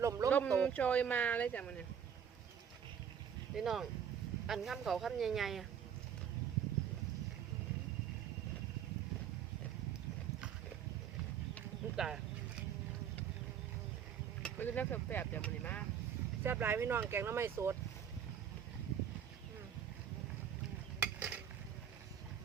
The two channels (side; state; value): left; quieter; 8.3 dB